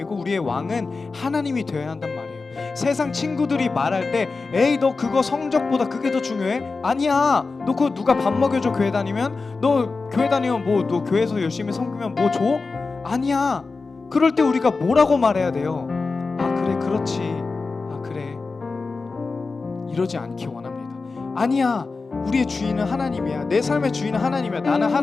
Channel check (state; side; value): quieter; right; 4.1 dB